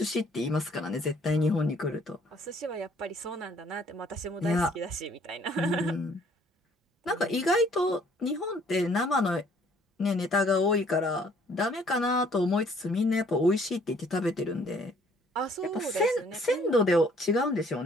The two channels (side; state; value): both; normal; correlation 0.61